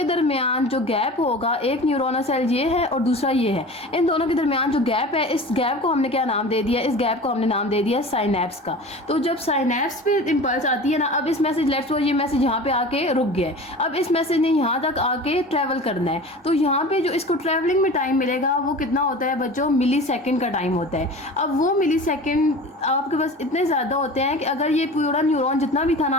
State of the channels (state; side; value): normal; both; correlation 0.37